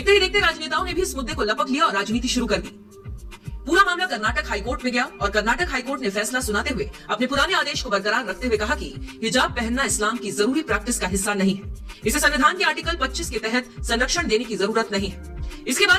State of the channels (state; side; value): identical; both; correlation 1.00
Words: ही देखते राजनेताओं ने भी इस मुद्दे को लपक लिया और राजनीति शुरू कर दी। पूरा मामला कर्नाटक हाईकोर्ट में गया और कर्नाटक हाईकोर्ट ने फैसला सुनाते हुए अपने पुराने आदेश को बरकरार रखते हुए कहा कि हिजाब पहनना इस्लाम की जरूरी प्रैक्टिस का हिस्सा नहीं है। इसे संविधान के आर्टिकल 25 के तहत संरक्षण देने की जरूरत नहीं है। इसके